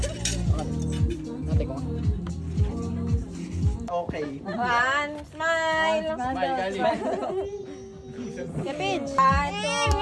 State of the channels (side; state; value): both; identical; correlation 1.00